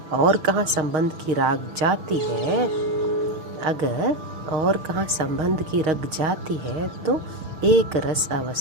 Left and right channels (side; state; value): left; late; 6.4 ms